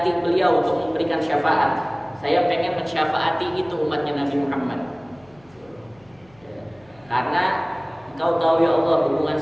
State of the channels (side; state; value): left; noise; hum, 30 dB below the sound